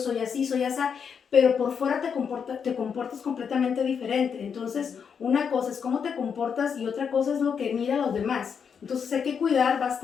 así, soy asa, pero por fuera te comportas completamente diferente. Entonces, una cosa es cómo te comportas y otra cosa es lo que mira a los demás. Entonces hay que cuidar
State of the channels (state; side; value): quieter; right; 6.8 dB